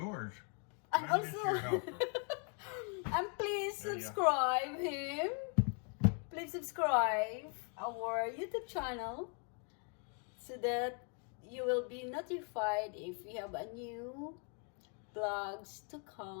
And I'm just your also, helper. and please There you go. subscribe him. Please subscribe our YouTube channel so that you will be notified if we have a new vlogs to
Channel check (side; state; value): right; quieter; 39.4 dB